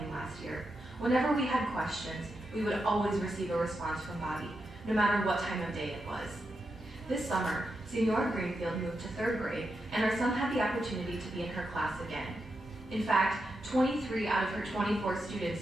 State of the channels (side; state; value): both; normal; correlation 0.86